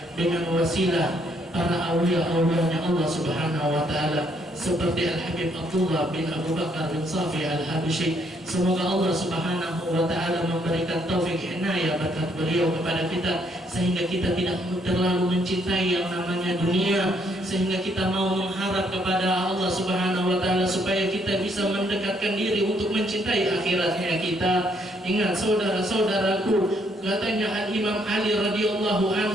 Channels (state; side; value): normal; both; correlation 0.70